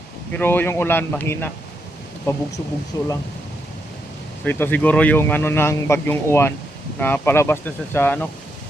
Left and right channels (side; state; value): both; normal; correlation 0.80